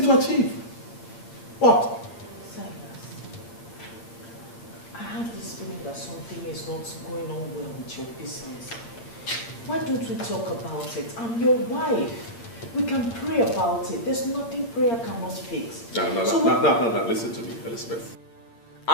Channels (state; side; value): late; right; 8.7 ms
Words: to achieve? What? Silas, I have this feeling that something is not going on well with your business. Why don't we talk about it? I'm your wife. We can pray about it. There's nothing prayer cannot fix. No, listen to me, Elizabeth.